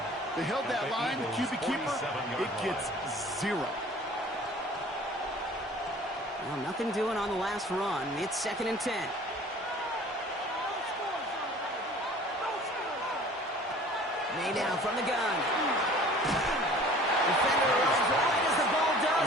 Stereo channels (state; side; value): normal; both; correlation 0.47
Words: They held that line, the QB keeper, it gets 0. Well, nothing doing on the last run. It's 2nd and 10. May now from the gun. Defender runs right as the ball